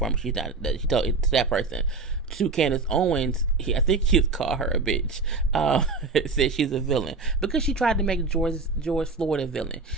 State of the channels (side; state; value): left; quieter; 3.9 dB